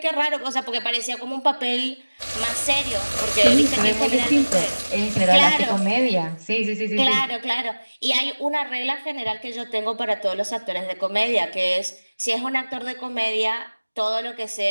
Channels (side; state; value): both; inverted; correlation -1.00